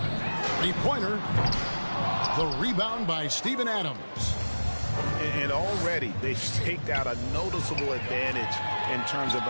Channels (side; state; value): both; inverted; correlation -1.00